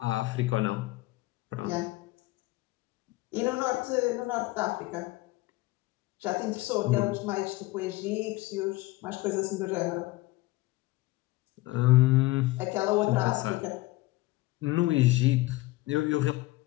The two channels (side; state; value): right; quieter; 19.6 dB